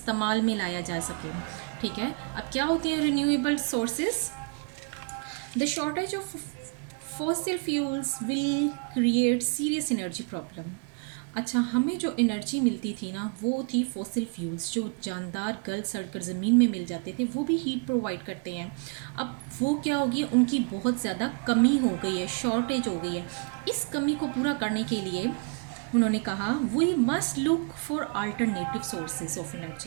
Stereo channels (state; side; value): quieter; left; 36.4 dB